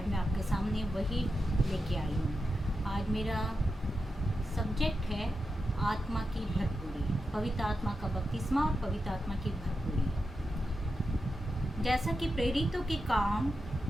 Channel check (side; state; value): both; normal; correlation 0.89